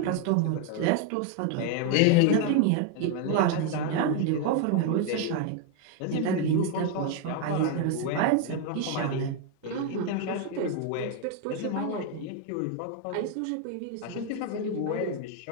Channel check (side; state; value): both; different; correlation 0.01